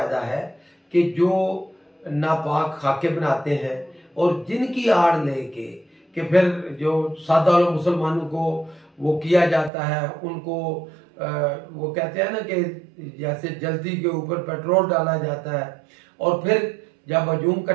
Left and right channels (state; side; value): drops out; left; at 9.7 s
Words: है कि जो नापाक खाके बनाते हैं और जिनकी आड़ लेके कि फिर जो सादा लोग मुसलमानों को वो किया जाता है, उनको वो कहते हैं ना कि जैसे जल्दी के ऊपर पेट्रोल डाला जाता है और फिर जब हजूम